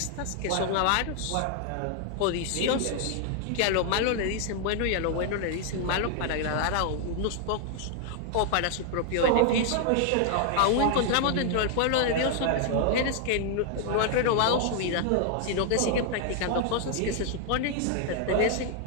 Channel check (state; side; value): different; both; correlation 0.00